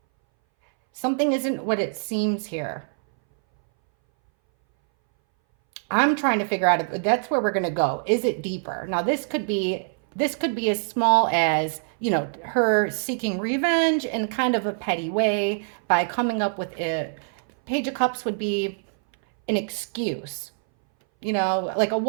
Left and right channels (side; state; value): left; silent; 60 dB below the other